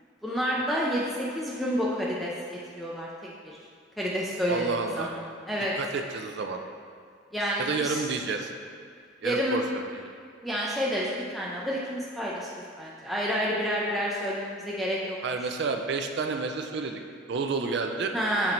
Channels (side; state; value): both; normal; correlation 0.41